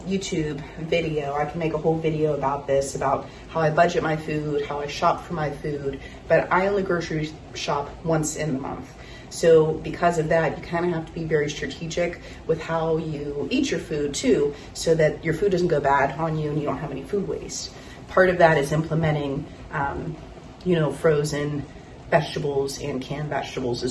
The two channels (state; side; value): identical; both; correlation 1.00